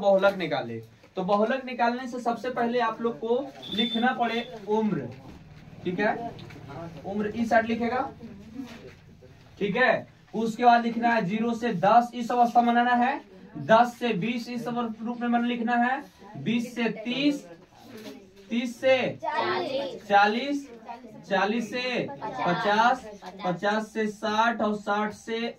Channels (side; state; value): both; identical; correlation 1.00